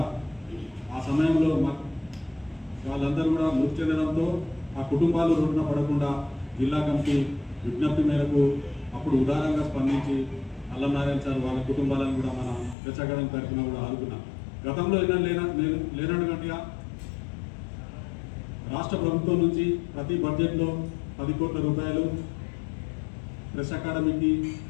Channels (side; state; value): right; drops out; at 12.8 s